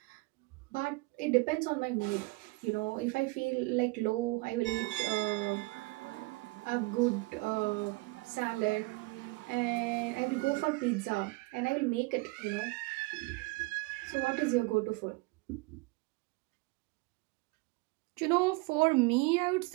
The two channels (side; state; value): left; quieter; 25.0 dB